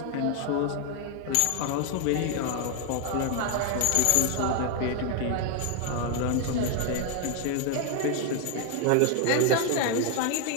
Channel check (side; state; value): both; different; correlation 0.01